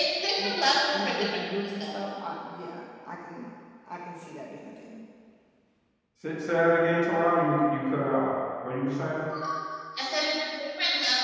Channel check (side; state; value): both; identical; correlation 1.00